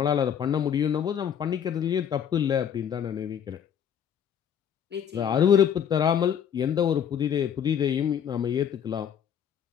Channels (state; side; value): quieter; right; 8.6 dB